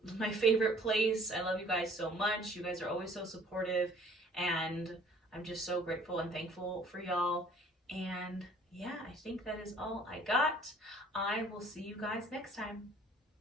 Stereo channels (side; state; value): both; normal; correlation 0.55